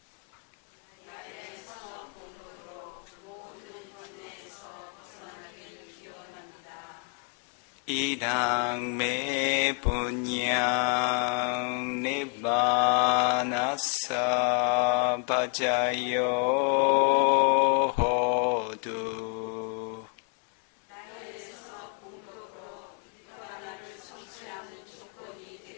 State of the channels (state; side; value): quieter; right; 37.0 dB